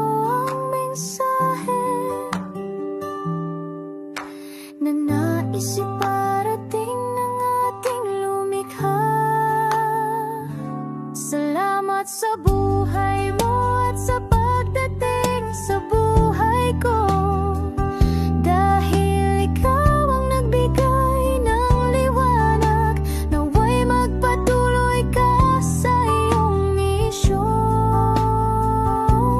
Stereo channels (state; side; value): identical; both; correlation 1.00